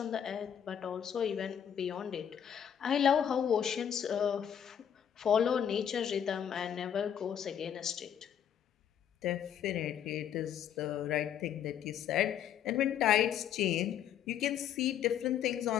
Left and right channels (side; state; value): right; quieter; 9.2 dB